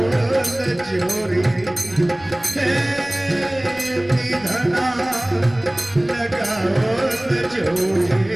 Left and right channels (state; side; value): noise; left; rumble, 23 dB below the sound